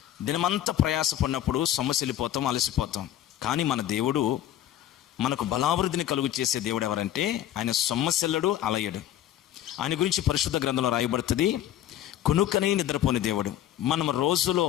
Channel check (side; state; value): right; quieter; 12.0 dB